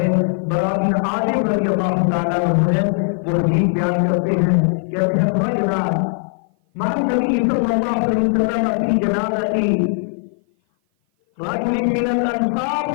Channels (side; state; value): right; silent; 56 dB below the other